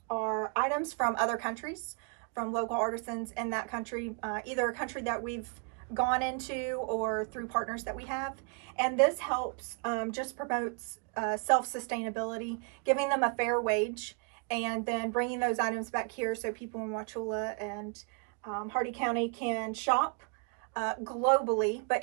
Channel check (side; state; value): left; quieter; 38.5 dB